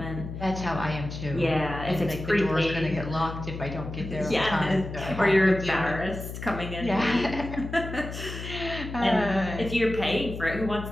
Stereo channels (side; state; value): left; noise; hum, 8 dB below the sound